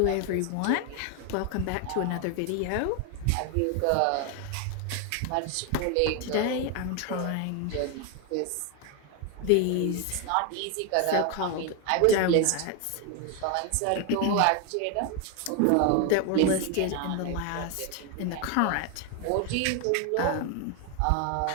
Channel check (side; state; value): both; different; correlation 0.01